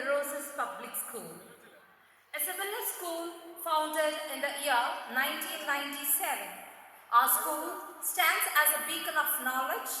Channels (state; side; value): identical; both; correlation 1.00